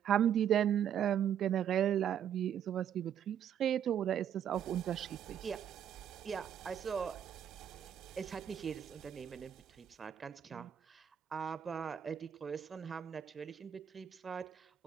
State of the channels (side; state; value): left; quieter; 9.4 dB